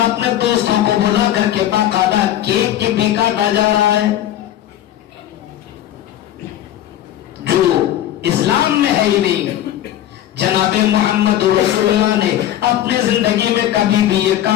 دوستوں کو بلا کر کے باقاعدہ کیک کی بھی کاٹا جا رہا ہے, جو اسلام میں ہے ہی نہیں. جناب محمد رسول اللہ نے اپنے زندگی میں کبھی بھی یہ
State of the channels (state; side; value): quieter; right; 12.2 dB